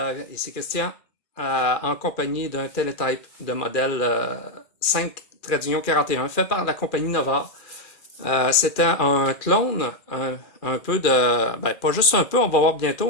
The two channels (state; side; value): late; right; 2.3 ms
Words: ici Christian, en compagnie d'un Teletype de modèle 5 trait d'union 41 fait par la compagnie Nova. C'était un clone, un peu de, pas juste un peu, on va voir bientôt,